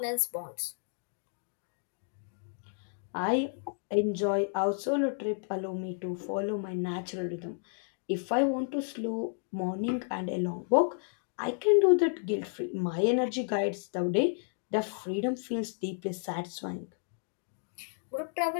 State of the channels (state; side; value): silent; right; digital silence